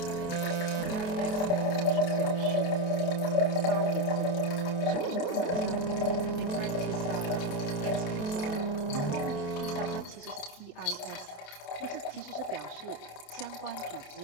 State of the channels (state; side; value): late; right; 28 ms